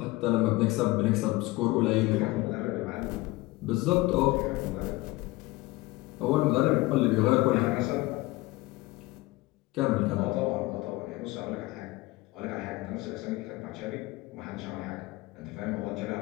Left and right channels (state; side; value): quieter; right; 20.4 dB